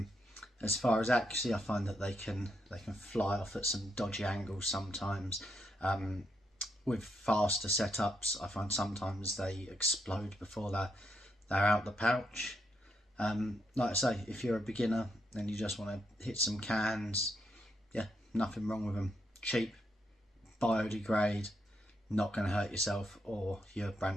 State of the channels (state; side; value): normal; both; correlation 0.79